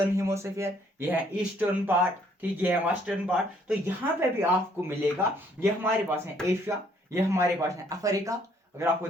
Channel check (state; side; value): normal; both; correlation 0.65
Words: हेमिस्फीयर, ये है ईस्टर्न पार्ट, ठीक, ये है वेस्टर्न पार्ट। तो यहाँ पे भी आपको मिलेगा, ये हमारे पास है एशिया, ये हमारे पास है अफ्रीका, अगर आपको